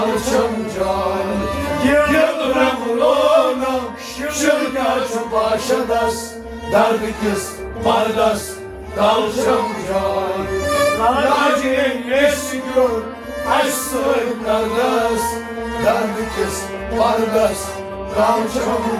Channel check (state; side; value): identical; both; correlation 1.00